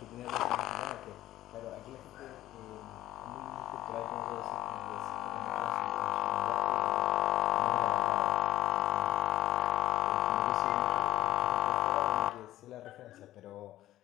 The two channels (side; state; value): right; quieter; 14.2 dB